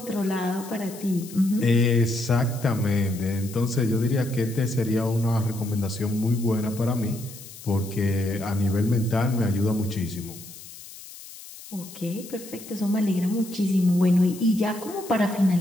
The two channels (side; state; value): left; noise; hiss, 16 dB below the sound